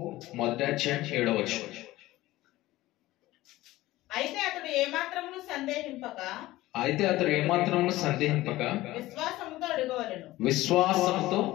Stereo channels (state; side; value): quieter; right; 17.3 dB